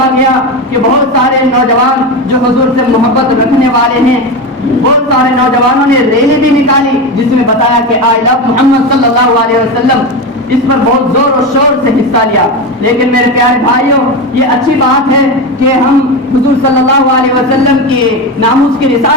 گیا کہ بہت سارے نوجوان جو حضور سے محبت رکھنے والے ہیں، بہت سارے نوجوانوں نے ریلی بھی نکالی جس میں بتایا کہ آئی لو محمد صلی اللہ علیہ وسلم. اس پر بہت زور و شور سے حصہ لیا. لیکن میرے پیارے بھائیوں، یہ اچھی بات ہے کہ ہم حضور صلی اللہ علیہ وسلم کے ناموس کی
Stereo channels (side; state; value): both; normal; correlation 0.19